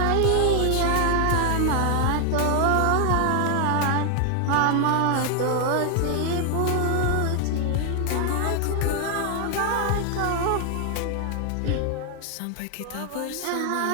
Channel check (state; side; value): different; both; correlation 0.00